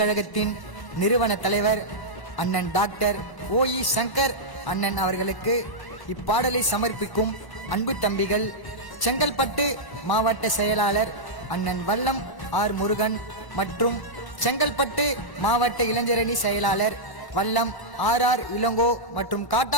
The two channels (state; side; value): late; right; 1.0 ms